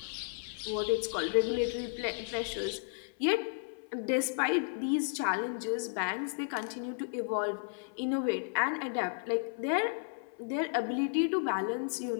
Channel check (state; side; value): silent; right; 55 dB below the other